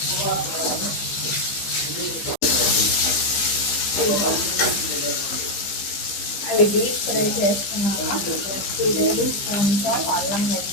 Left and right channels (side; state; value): right; late; 15 ms